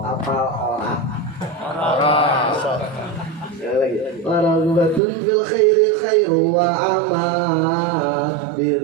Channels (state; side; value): drops out; left; at 5.0 s